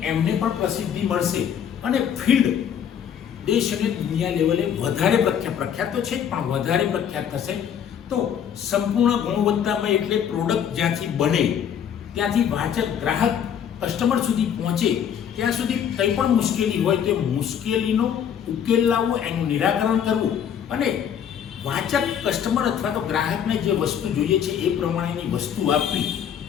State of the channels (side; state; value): right; quieter; 8.7 dB